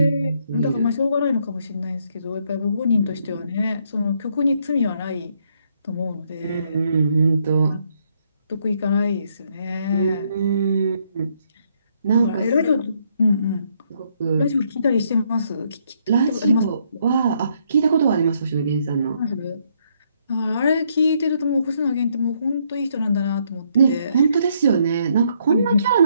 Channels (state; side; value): inverted; both; correlation -0.72